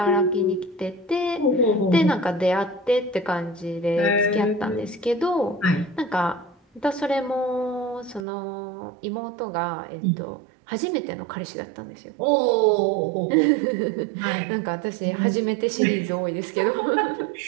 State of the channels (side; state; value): left; drops out; at 8.2 s